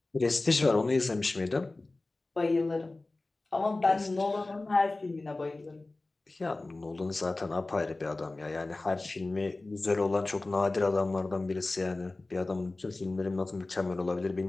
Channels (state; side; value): quieter; right; 3.1 dB